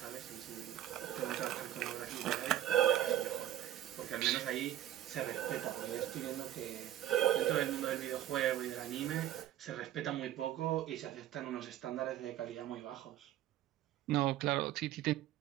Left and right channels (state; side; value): quieter; left; 12.5 dB